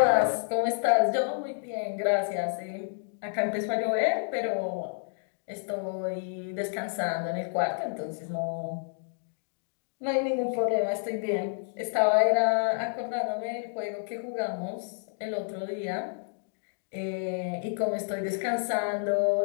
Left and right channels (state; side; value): silent; right; digital silence